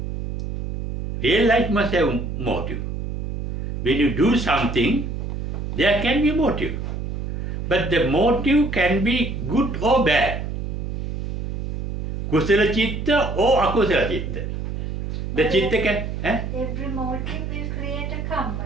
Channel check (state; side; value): noise; right; hum, 4 dB below the sound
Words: Real life must have motive. When you do something, there can be a motive. But the motive can be good or bad. Kusala chitta or akusala chitta. The chitta can... Every motive will create a karma.